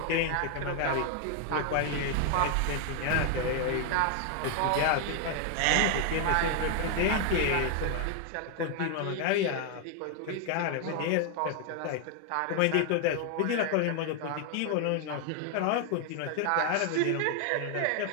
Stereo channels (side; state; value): both; different; correlation 0.00